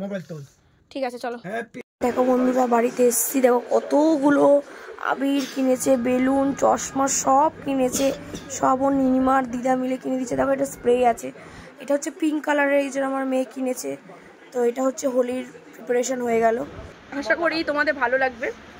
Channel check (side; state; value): both; identical; correlation 1.00